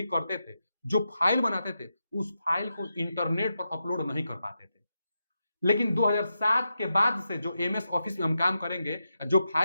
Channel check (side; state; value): both; inverted; correlation -0.87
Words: करते थे, जो फाइल बनाते थे, उस फाइल को इंटरनेट पर अपलोड नहीं कर पाते थे। लेकिन 2007 के बाद से जो एमएस ऑफिस में हम काम करेंगे, जो